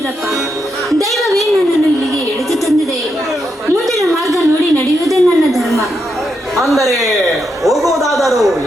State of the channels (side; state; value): both; normal; correlation 0.82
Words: ದೈವವೇ ನನ್ನನ್ನು ಇಲ್ಲಿಗೆ ಎಳೆದು ತಂದಿದೆ. ಮುಂದಿನ ಮಾರ್ಗ ನೋಡಿ ನಡೆಯುವುದೇ ನನ್ನ ಧರ್ಮ. ಅಂದರೆ ಹೋಗುವುದಾದರೂ